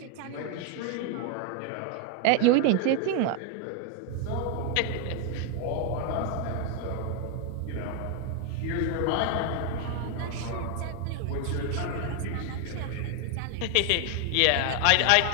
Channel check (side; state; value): both; different; correlation 0.00